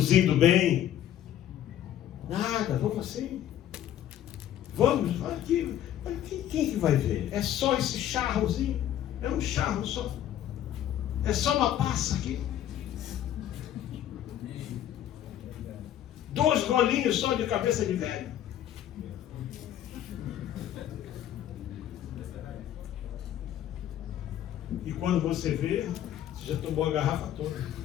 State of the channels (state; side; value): quieter; right; 11.4 dB